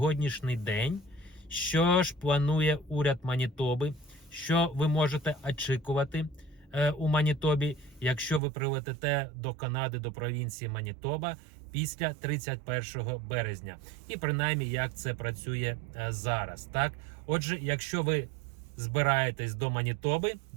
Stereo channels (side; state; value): left; drops out; at 8.4 s